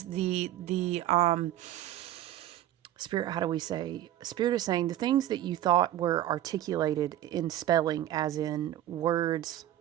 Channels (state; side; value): quieter; left; 13.0 dB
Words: the spirit, how do we say? Spirit is saying the things that you thought were articulated in spelling, as in words